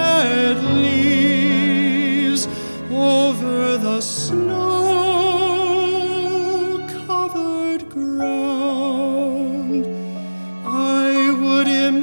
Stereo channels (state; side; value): inverted; both; correlation -1.00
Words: leaves over the snow-covered ground. I would